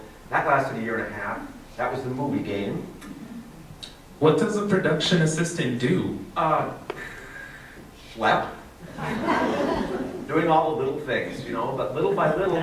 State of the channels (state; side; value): identical; both; correlation 1.00